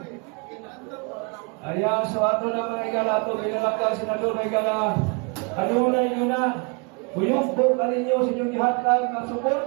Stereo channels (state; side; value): quieter; left; 33.2 dB